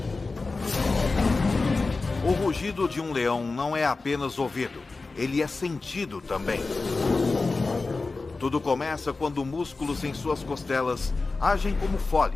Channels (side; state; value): right; quieter; 3.8 dB